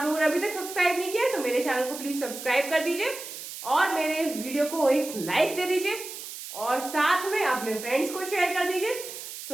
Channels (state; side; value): noise; right; hiss, 10 dB below the sound